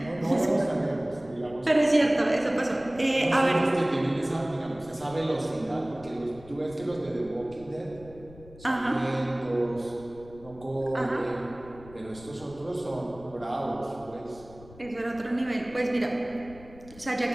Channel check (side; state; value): left; noise; rumble, 20 dB below the sound